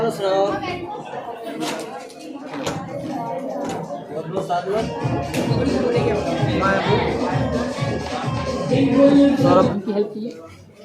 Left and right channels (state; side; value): identical; both; correlation 1.00